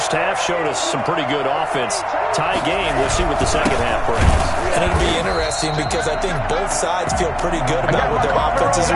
half showed us some pretty good offense. Tie game. We'll see what the second half brings. And it'll be interesting because I think both sides feel pretty good about what their offenses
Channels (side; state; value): both; identical; correlation 1.00